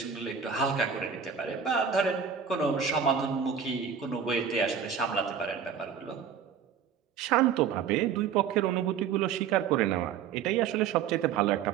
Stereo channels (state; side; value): quieter; left; 7.4 dB